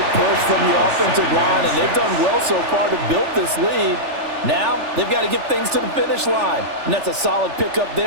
push from the offensive line, and they've done well so far to build this lead. Now they've got to get things to the finish line, and that's a solid pickup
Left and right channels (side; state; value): left; late; 3.4 ms